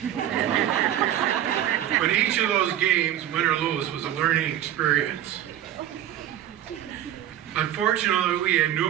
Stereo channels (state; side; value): quieter; left; 11.7 dB